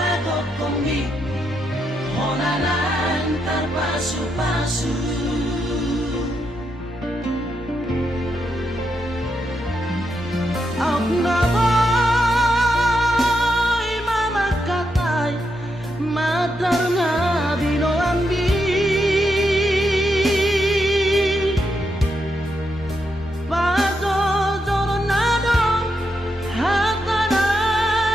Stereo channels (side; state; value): both; normal; correlation 0.82